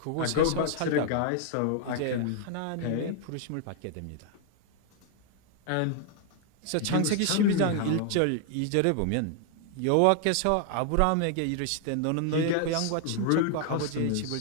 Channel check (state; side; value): different; both; correlation 0.00